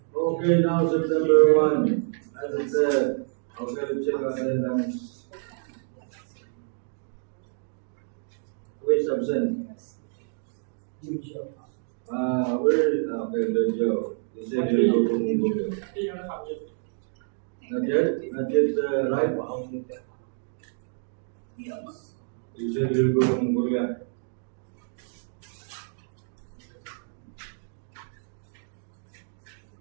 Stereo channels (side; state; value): left; silent; 60 dB below the other